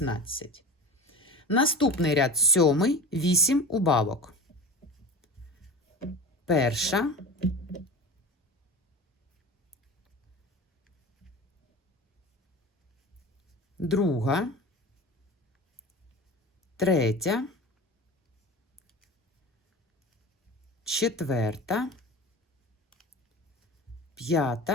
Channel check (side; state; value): both; normal; correlation 0.32